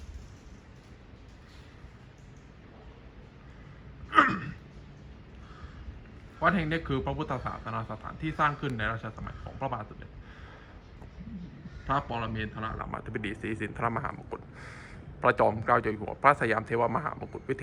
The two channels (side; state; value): both; identical; correlation 1.00